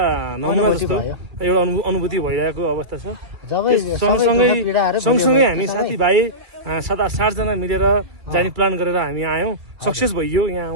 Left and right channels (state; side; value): late; left; 2.3 ms